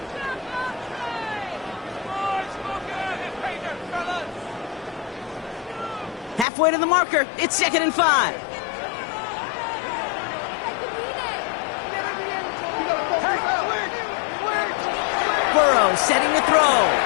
Halfway to the marker. It's second and 5. Burrow setting the throw.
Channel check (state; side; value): drops out; right; at 6.5 s